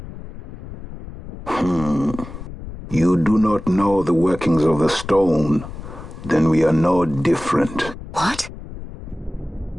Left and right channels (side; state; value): both; normal; correlation 0.96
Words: You do not know the workings of the stone. Then we are no different. What?